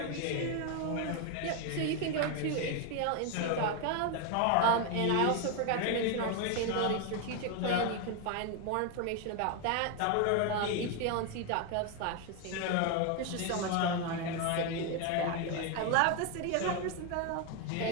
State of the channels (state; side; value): different; both; correlation 0.01